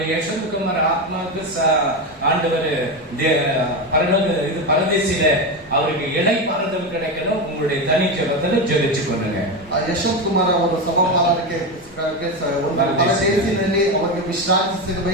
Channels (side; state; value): both; normal; correlation 0.15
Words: யசோத்குமார் ஆத்மாவுக்கு ஆண்டவர் பரதேசில அவருக்கு இலை பாறுதல் கிடைக்கணும். உங்களுடைய தனி ஜெபத்துல ஜெபிச்சு கொள்ளுங்க. ಯಶವಂತ್ ಕುಮಾರ್ ಅವರ ಸಭಾಪಾಲನಕ್ಕೆ ಪರದೇಶಿನಲ್ಲಿ ಅವರಿಗೆ ವಿಶ್ರಾಂತಿ